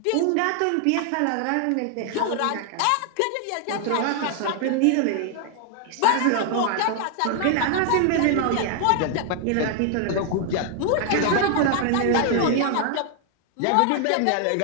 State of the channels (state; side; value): different; both; correlation 0.00